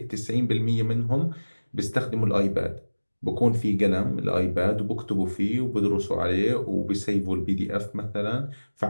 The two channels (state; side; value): inverted; both; correlation -1.00